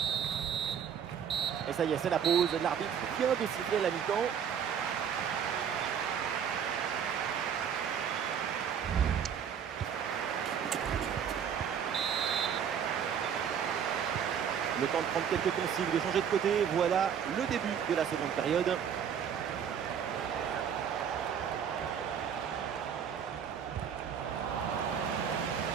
Et ça y est, c'est la pause. L'arbitre vient de siffler la mi-temps. Le temps de prendre quelques consignes, de changer de côté. Voilà le début de la seconde période.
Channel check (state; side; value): quieter; left; 8.0 dB